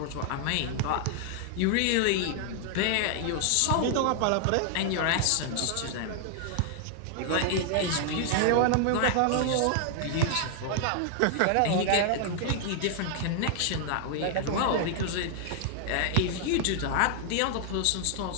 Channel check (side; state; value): both; different; correlation 0.00